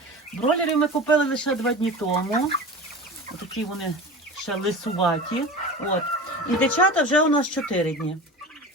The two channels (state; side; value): normal; both; correlation 0.32